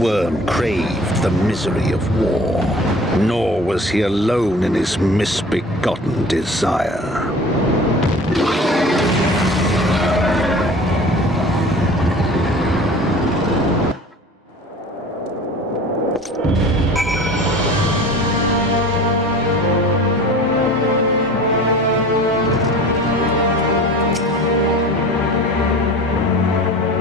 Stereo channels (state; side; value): normal; both; correlation 0.42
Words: craved the misery of war. Nor was he alone in his misbegotten desire.